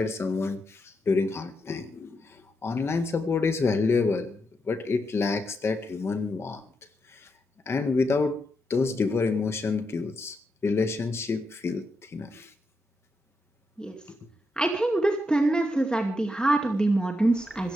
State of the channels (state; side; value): normal; both; correlation 0.83